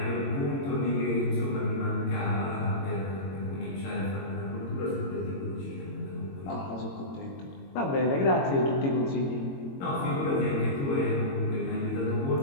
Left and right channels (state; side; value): late; right; 22 ms